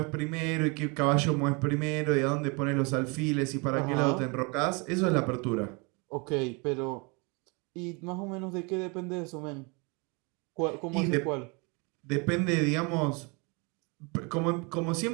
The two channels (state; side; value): quieter; left; 30.5 dB